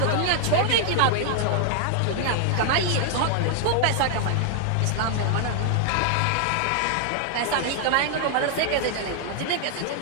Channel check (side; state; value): both; different; correlation 0.00